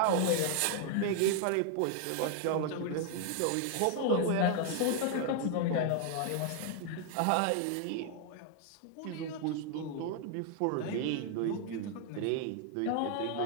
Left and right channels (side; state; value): both; different; correlation 0.00